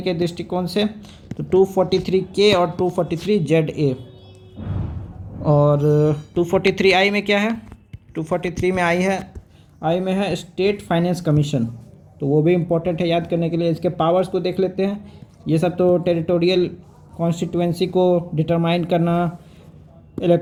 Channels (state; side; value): identical; both; correlation 1.00